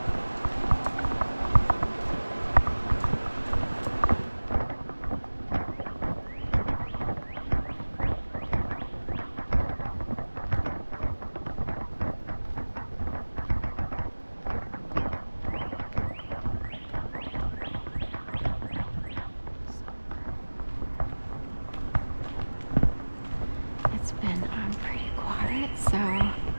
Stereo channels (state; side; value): inverted; both; correlation -1.00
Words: Pretty quiet, so